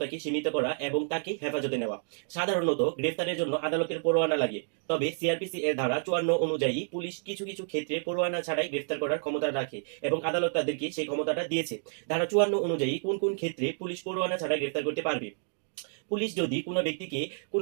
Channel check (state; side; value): silent; left; digital silence